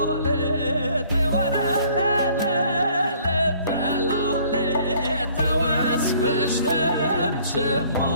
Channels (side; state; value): both; inverted; correlation -0.58